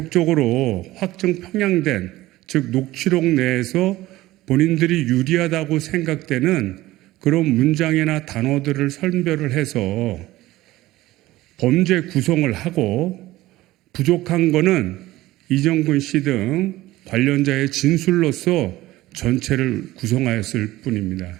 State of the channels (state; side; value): quieter; left; 17.1 dB